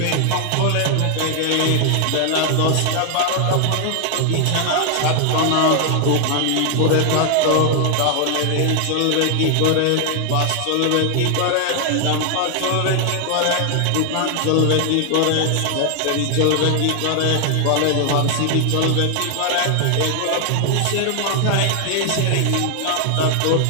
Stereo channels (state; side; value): different; both; correlation 0.00